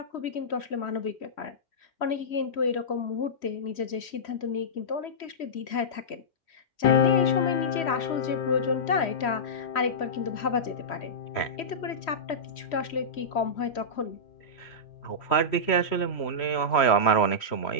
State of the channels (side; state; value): right; late; 3.1 ms